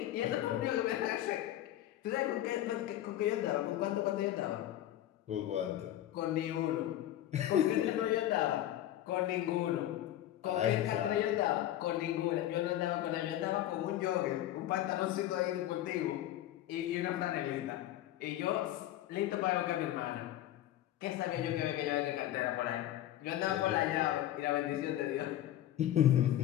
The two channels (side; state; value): right; quieter; 13.0 dB